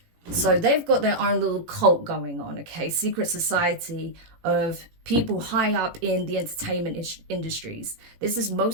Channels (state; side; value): late; left; 18 ms